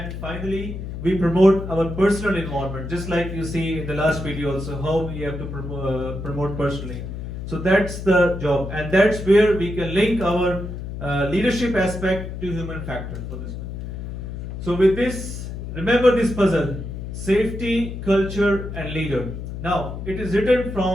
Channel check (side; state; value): left; noise; hum, 7 dB below the sound